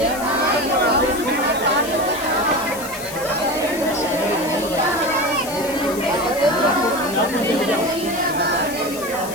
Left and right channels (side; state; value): left; noise; hiss, 12 dB below the sound